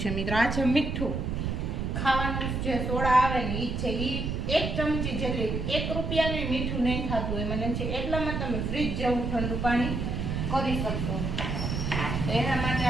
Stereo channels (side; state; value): right; noise; rumble, 2 dB below the sound